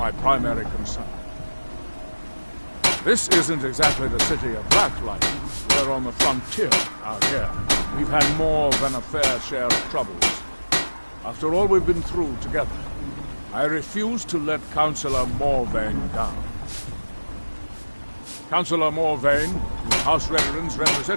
primary concern. This isn't exactly the city of Blacklight. We're on the frontier out here. We've had more than a fair share of troubles. After all we've been through together, I refuse to let Councillor Morvain down. Councillor Morvain is House Redoran's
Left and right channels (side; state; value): both; inverted; correlation -1.00